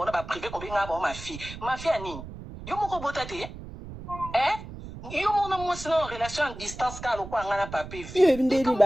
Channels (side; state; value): right; noise; rumble, 12 dB below the sound